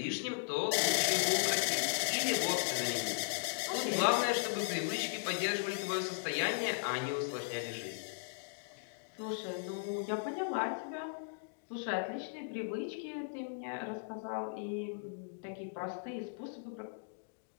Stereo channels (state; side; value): silent; right; digital silence